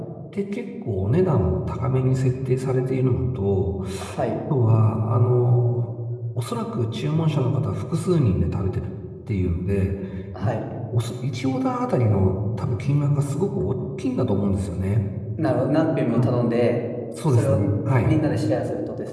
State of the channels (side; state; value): both; identical; correlation 1.00